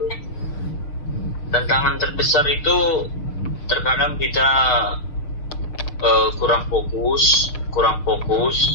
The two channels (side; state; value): right; late; 6.6 ms